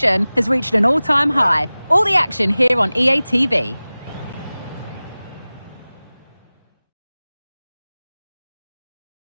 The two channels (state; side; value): inverted; both; correlation -0.98